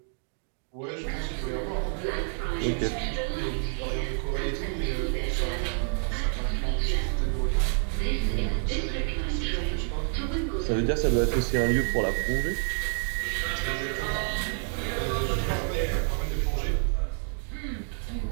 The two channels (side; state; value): left; silent; 59 dB below the other